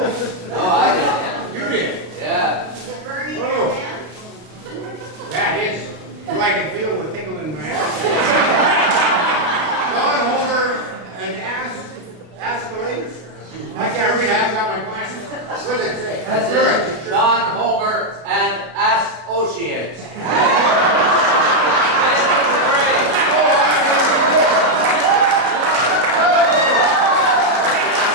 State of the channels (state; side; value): late; left; 32 ms